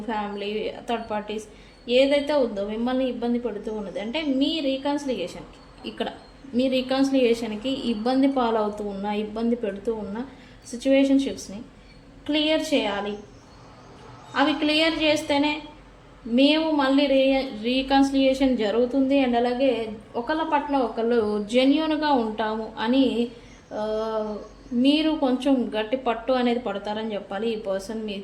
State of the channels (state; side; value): identical; both; correlation 1.00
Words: ఫ్యామిలీ, థర్డ్ పార్టీస్, ఏదైతే ఉందో మిమ్మల్ని ఇబ్బంది పెడుతూ ఉన్నది అంటే మీ రీకన్సిలియేషన్కి, ఇక్కడ మీ రీకన్సిలియేషన్కి ఇబ్బంది పాలవుతూ ఉన్న, ఇబ్బంది పెడుతూ ఉన్న సిచ్యువేషన్షిప్స్ని క్లియర్ చేయాలి. అవి క్లియర్ చేస్తేనే మేము మళ్ళీ రీకన్సిలియేషన్ జరుగుతుంది అండ్ అలాగే ఒకళ్ళ పట్ల ఒకళ్ళు జెన్యూన్గా ఉంటాము అని మీరు కొంచెం గట్టి పట్టు అనేది పడతారని చెప్పాలి ఈ పర్సన్